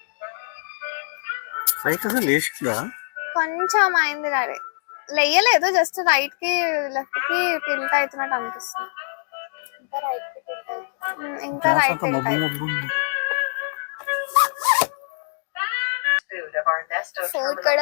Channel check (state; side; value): silent; right; digital silence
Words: పైకి అసలు లేచిందా? కొంచెం అయింది daddy, లేయలేదు, just right కి left కి టిల్ట్ అవుతున్నట్టు అనిపిస్తుంది. ఇంకా right Food of our Nesto